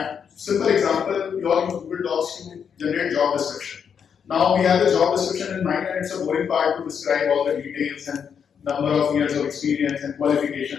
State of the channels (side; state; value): right; quieter; 7.3 dB